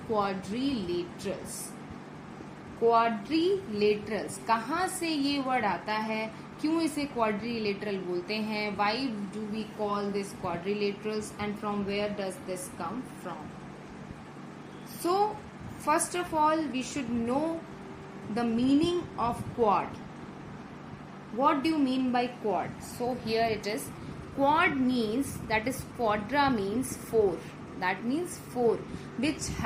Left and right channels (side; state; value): both; identical; correlation 1.00